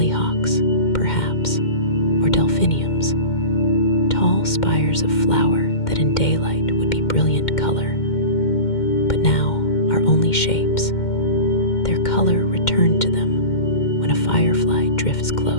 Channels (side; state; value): right; late; 2.1 ms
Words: perhaps, or delphiniums, tall spires of flower that in daylight would be brilliant color, but now are only shapes. Their color returned to them when a firefly drifts